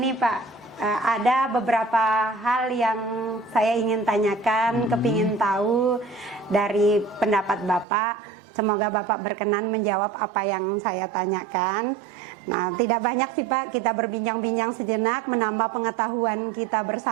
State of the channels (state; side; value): drops out; left; at 7.9 s